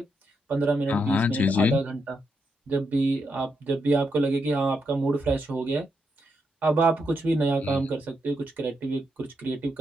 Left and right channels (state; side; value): normal; both; correlation 0.82